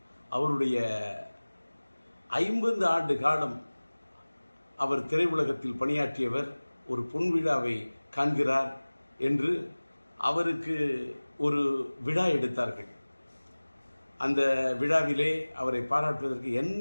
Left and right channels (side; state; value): both; inverted; correlation -1.00